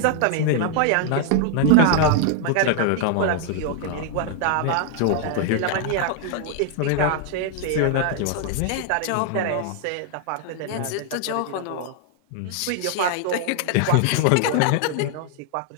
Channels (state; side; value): different; both; correlation 0.00